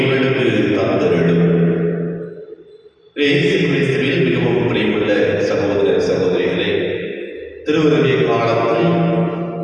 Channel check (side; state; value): both; identical; correlation 1.00